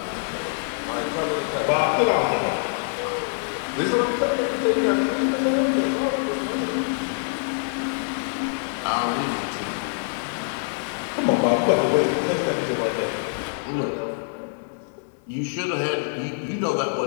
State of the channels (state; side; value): silent; right; digital silence